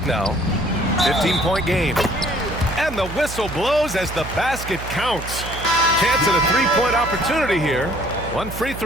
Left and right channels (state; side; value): noise; right; hum, 10 dB below the sound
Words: now. 15-point game. And the whistle blows as the basket counts. Chance at a three-point opportunity here. One free